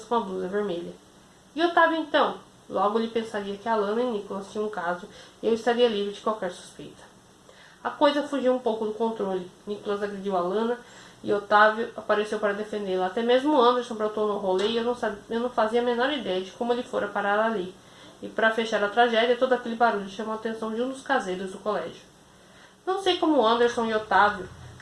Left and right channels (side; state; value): both; identical; correlation 1.00